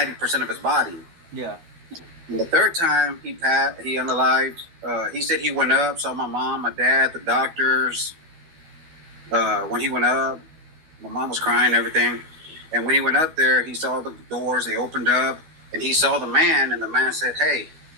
of his body. Yeah. And the third time he unalived, he said he went up, saw my mom, my dad, the doctors. When he went up, my mom was crying and everything. And when he went up there, he saw the doors, they opened up, and he saw the man, and the man said, hey,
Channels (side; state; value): left; late; 12 ms